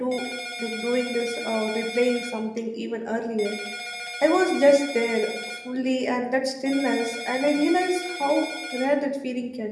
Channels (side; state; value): both; identical; correlation 1.00